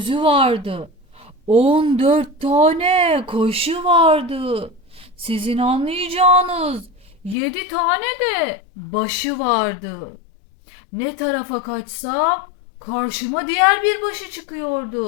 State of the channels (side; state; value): right; drops out; at 7.4 s